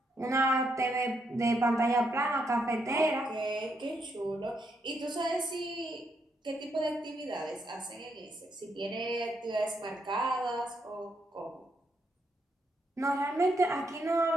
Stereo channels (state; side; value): normal; both; correlation 0.78